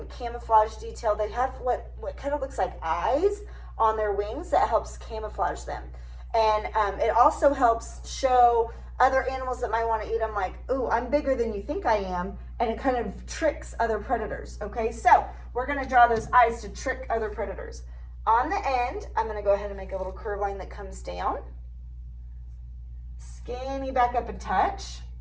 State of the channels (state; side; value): identical; both; correlation 1.00